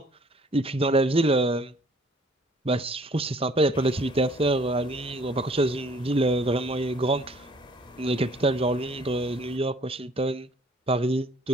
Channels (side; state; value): both; normal; correlation 0.57